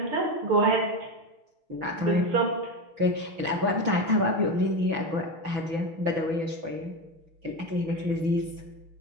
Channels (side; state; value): left; late; 6.1 ms